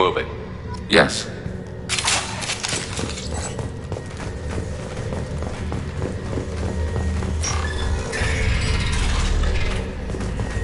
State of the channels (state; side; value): identical; both; correlation 1.00